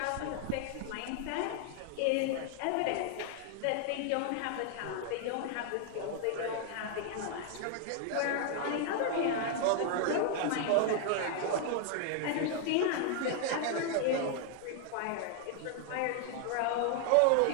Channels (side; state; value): both; different; correlation 0.00